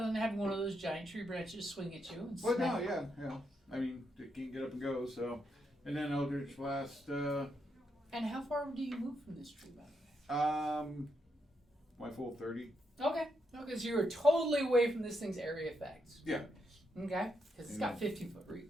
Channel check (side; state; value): both; normal; correlation 0.80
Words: than having one of those giant tree branches swing at you. And Well, no, smack. yeah. I mean, it can't get up and go, so. And then Eldritch Blast, And how far do you move from this tree, by the way? my full 30. Okay. Okay, so you're totally away from this thing's area effects. Yeah. Okay. Because it's got 15-foot